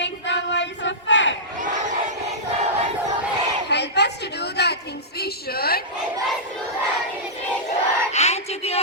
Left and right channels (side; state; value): both; normal; correlation -0.15